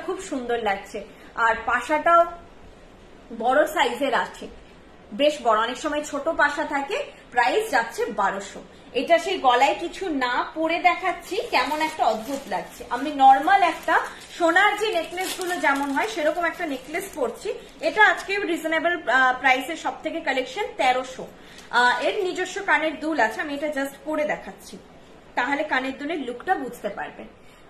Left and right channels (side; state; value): both; identical; correlation 1.00